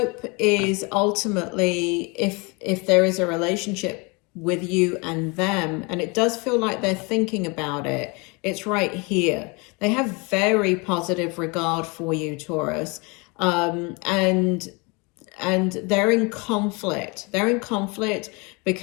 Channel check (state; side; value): quieter; right; 29.1 dB